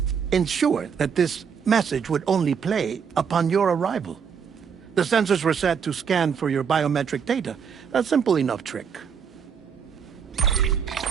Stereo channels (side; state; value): left; quieter; 6.8 dB